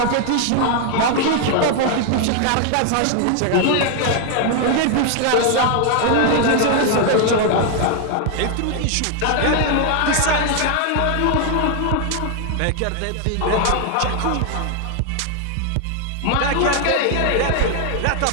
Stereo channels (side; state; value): both; different; correlation 0.00